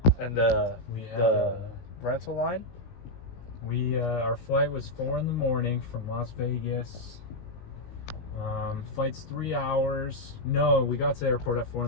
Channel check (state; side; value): late; right; 17 ms